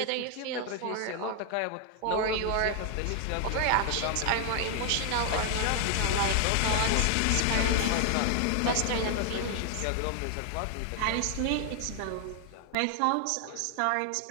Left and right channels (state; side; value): different; both; correlation 0.00